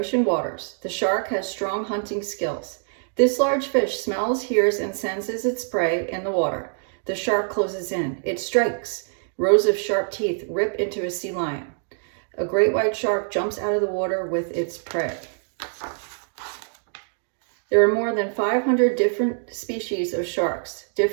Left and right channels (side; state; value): left; silent; 62 dB below the other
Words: waters. The shark has strong hunting skills. This large fish smells, hears, and senses its prey in the water. The shark closes in. It strikes. Rows of sharp teeth rip into a sea lion. A great white shark jumps out of the water with its prey. There are more than 500 different species of sharks.